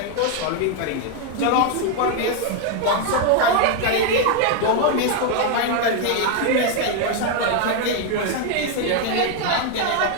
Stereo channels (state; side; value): different; both; correlation 0.00